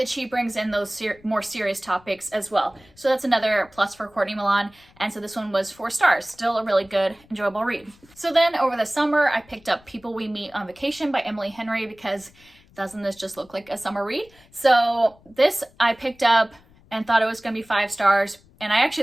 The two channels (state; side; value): noise; left; rumble, 28 dB below the sound